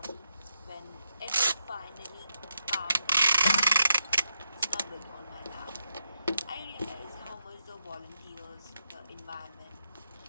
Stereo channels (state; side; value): inverted; both; correlation -0.82